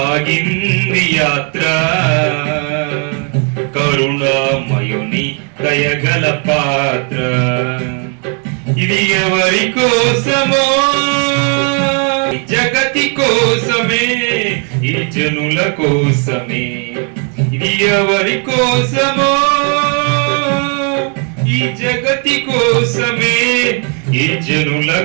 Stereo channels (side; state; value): left; quieter; 39.4 dB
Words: యాత్ర, కరుణామయుని దయగల పాత్ర. ఇది ఎవరి కోసమో? జగతి కోసమే, ఈ జనుల కోసమే. ఇది ఎవరి కోసమో? ఈ జగతి కోసమే, ఈ జనుల